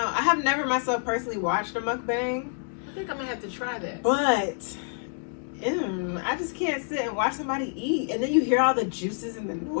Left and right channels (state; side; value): silent; right; 60 dB below the other